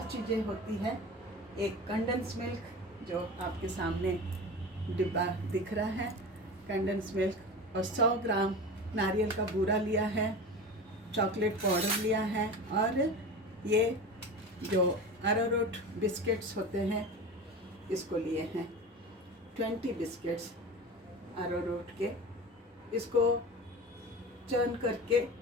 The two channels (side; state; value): both; normal; correlation 0.31